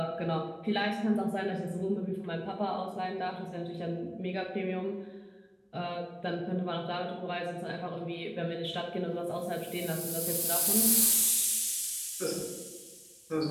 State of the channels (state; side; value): identical; both; correlation 1.00